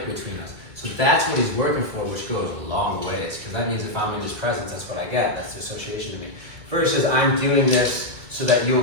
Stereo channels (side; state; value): left; late; 1.6 ms